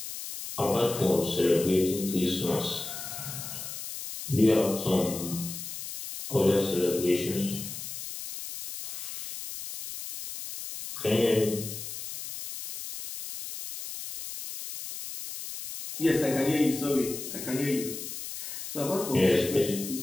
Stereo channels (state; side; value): noise; left; hiss, 8 dB below the sound